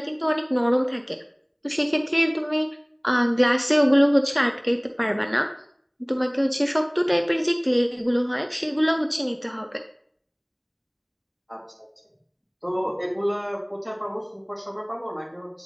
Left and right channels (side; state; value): both; identical; correlation 1.00